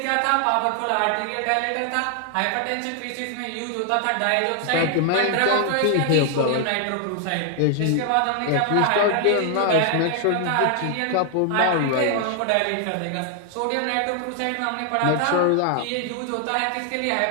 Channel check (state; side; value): different; both; correlation 0.00